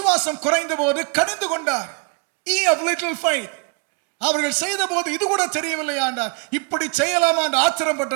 குறைந்த போது கடிந்து கொண்டார். Ye of little faith. அவர்கள் செய்த போது இது கூட தெரியவில்லையா என்றார். இப்படி செய்யலாமா என்று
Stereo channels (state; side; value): quieter; left; 31.8 dB